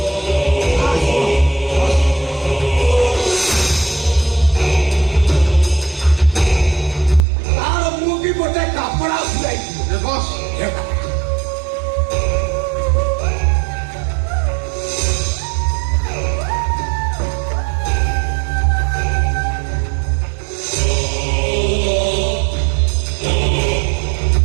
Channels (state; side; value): drops out; left; at 7.2 s